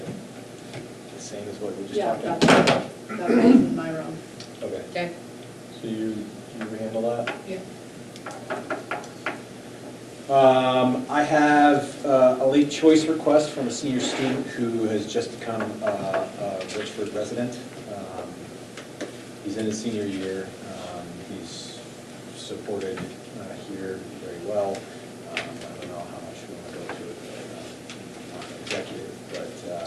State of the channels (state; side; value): identical; both; correlation 1.00